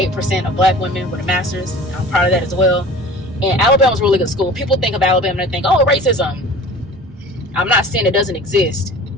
of black women with a master's. I'm proud of that as well. And Alabama's a really good school. People think of Alabama and they think, oh, racism. I'm not saying it doesn't exist.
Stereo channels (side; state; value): both; normal; correlation 0.42